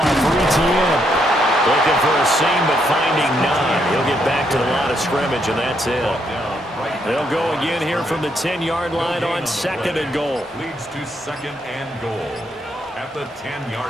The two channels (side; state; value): both; normal; correlation 0.75